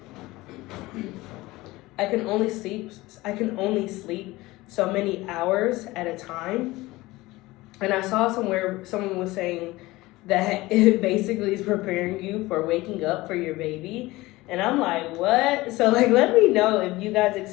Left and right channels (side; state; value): right; quieter; 19.7 dB